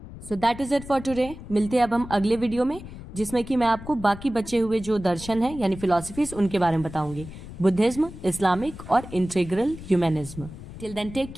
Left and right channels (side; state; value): left; noise; rumble, 14 dB below the sound